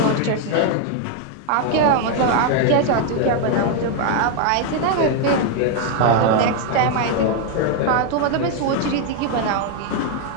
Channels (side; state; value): both; different; correlation 0.01